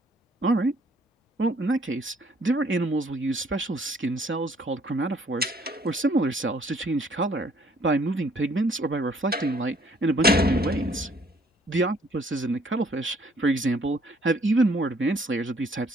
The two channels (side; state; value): both; normal; correlation 0.62